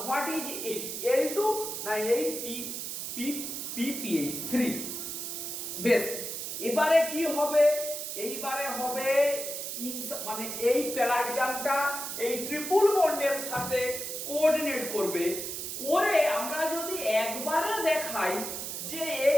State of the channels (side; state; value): right; noise; hiss, 5 dB below the sound